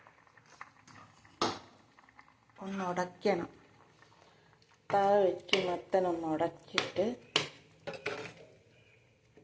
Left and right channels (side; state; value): both; identical; correlation 1.00